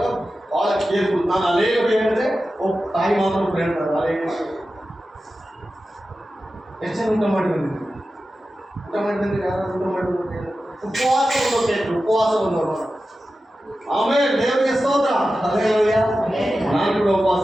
ಬಹಳ ಕೇರ್ಫುಲ್. ನಾನು ಅನೇಕ ಹೇಳಿದ್ರೆ ತಾಯಿ ಮಾತ್ರ ಹೇಳ್ತಾರೆ, ಅದೇ ಎಷ್ಟು ಜನ ಊಟ ಮಾಡಿ ಬಂದಿದ್ದೀವಿ? ಊಟ ಮಾಡಿ ಬಂದಿದ್ರೆ ಯಾರು ಊಟ ಮಾಡಿ ಉಪವಾಸ ಬಂದವರು. ಆಮೇಲೆ ದೇವರಿಗೆ ಸ್ತೋತ್ರ. ಹಲ್ಲೆಲೂಯಾ. ನಾನು ಕೂಡ ಉಪವಾಸ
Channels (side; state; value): both; normal; correlation 0.93